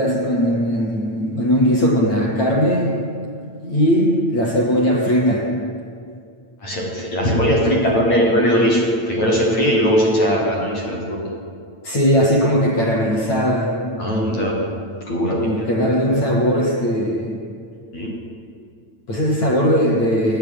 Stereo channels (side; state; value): right; late; 8.9 ms